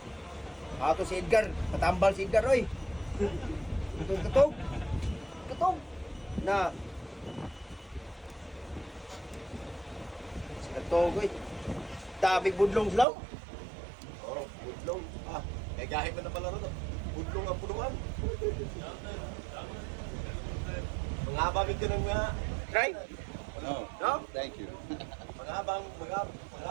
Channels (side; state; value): left; drops out; at 13.1 s